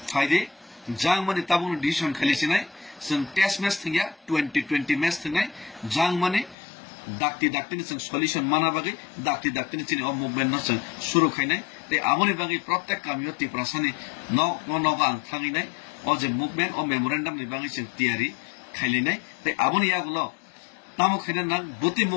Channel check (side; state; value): right; drops out; at 6.6 s